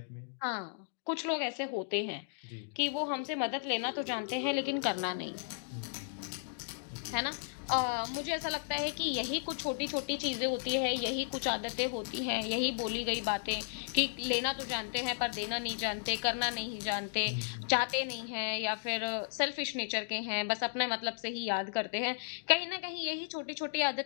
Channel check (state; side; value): silent; right; digital silence